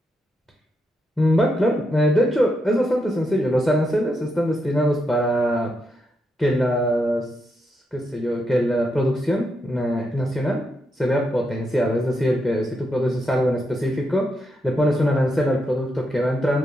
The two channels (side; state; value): both; normal; correlation 0.82